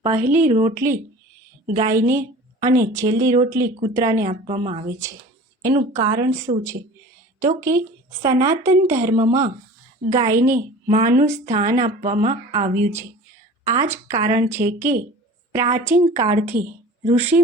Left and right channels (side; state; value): both; normal; correlation 0.41